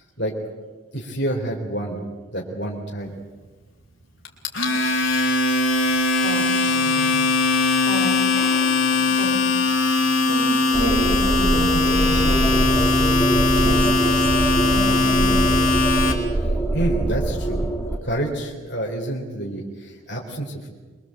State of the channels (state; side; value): normal; both; correlation 0.52